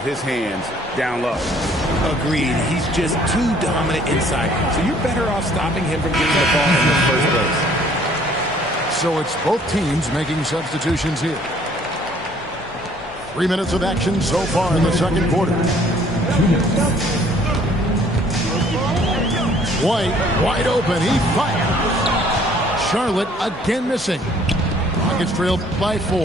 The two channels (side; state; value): both; normal; correlation 0.59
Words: his hands down low. Agreed. He's just too dominant inside. So you're better off stopping him from getting the ball in the first place. So it's both teams making substitutions here. 3 minutes of action so far in the second quarter. White wide open. He fires. Charlotte again missing. Rockets trailed by